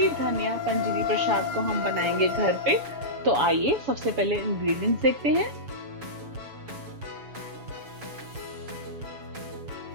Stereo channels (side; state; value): left; late; 7.1 ms